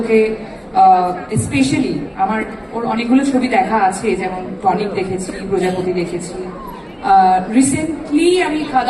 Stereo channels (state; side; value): identical; both; correlation 1.00